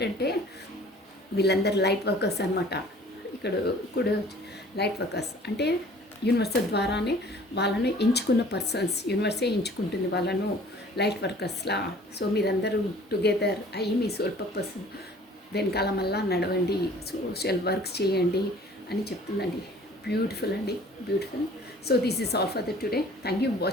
వీళ్ళందరూ లైట్ వర్కర్స్ అనమాట. ఇక్కడ కూడా లైట్ వర్కర్స్ అంటే యూనివర్సల్ ద్వారానే వాళ్ళను ఎంచుకున్న పర్సన్స్, యూనివర్సే ఎంచుకుంటుంది వాళ్ళను లైట్ వర్కర్స్లా. సో మీరందరూ టుగెదర్ అయ్యి మీ సోల్ పర్పస్ వెనకాల మళ్ళా నడవండి, సోషల్ వర్క్స్ చేయండి అని చెప్తుందండి. బ్యూటిఫుల్ అండి, beautiful. So this is all for the today. Thank you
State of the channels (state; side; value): normal; both; correlation 0.51